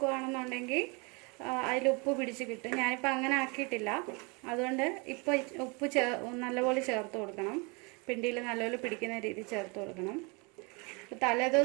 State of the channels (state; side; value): quieter; left; 30.4 dB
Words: അതിൽ ഉപ്പ് പിടിച്ച് കിട്ടും. ഞാനിപ്പോൾ അങ്ങനെ ആക്കിയിട്ടില്ല. അതുകൊണ്ട് ഇപ്പോൾ ഉപ്പ് നല്ലപോലെ ചേർത്ത് കൊടുക്കണം. പിണ്ടിയിൽ നല്ലപോലെ പിടിക്കുന്ന രീതി ചേർത്ത് കൊടുക്കണം.